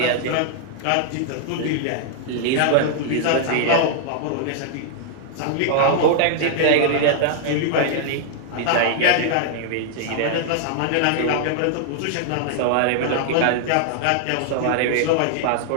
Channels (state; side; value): different; both; correlation -0.01